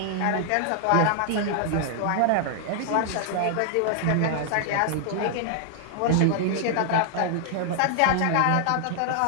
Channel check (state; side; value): different; both; correlation -0.01